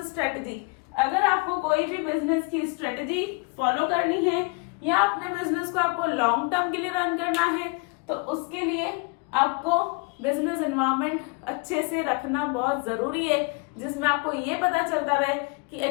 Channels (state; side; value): quieter; right; 31.3 dB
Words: strategy. अगर आपको कोई भी बिजनेस की स्ट्रेटजी फॉलो करनी है या अपने बिजनेस को आपको लॉन्ग टर्म के लिए रन करना है, तो उसके लिए आपको बिजनेस एनवायरनमेंट अच्छे से रखना बहुत जरूरी है, जिसमें आपको ये पता चलता रहे कि